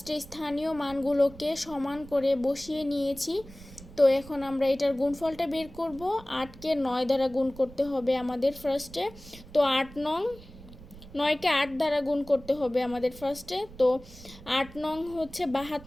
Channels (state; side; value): noise; right; rumble, 18 dB below the sound